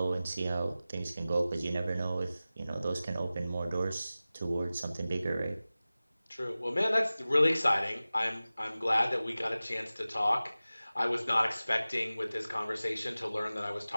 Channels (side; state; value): both; inverted; correlation -0.97